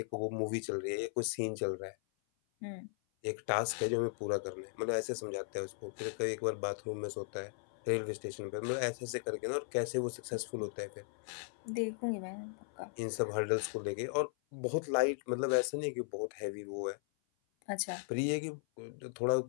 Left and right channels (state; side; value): silent; right; 53 dB below the other